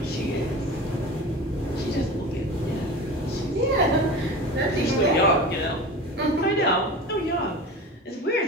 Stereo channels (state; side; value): normal; both; correlation 0.32